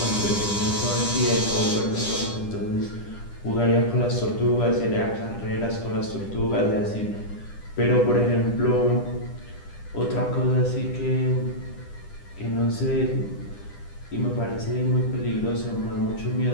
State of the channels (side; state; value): right; late; 10 ms